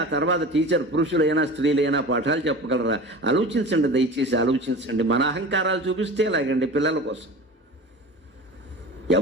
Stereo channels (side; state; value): both; normal; correlation 0.35